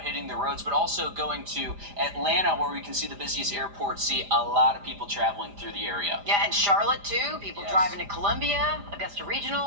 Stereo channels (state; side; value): late; left; 4.9 ms